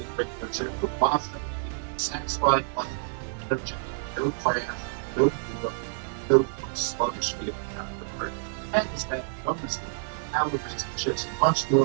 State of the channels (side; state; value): left; silent; 59 dB below the other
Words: regular chips with pasta. Satisfied by energy, no crash, no fever, no sluggish feeling after break. And is that bonus calories and chips and much